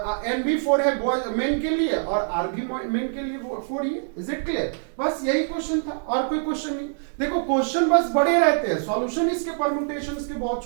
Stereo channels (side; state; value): left; silent; digital silence